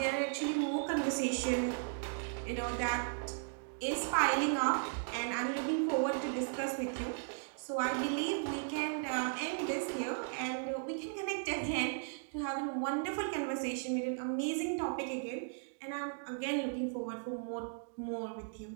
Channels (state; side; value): silent; left; digital silence